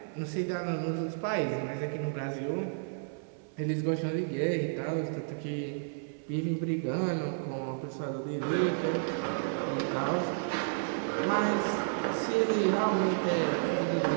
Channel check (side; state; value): left; silent; 57 dB below the other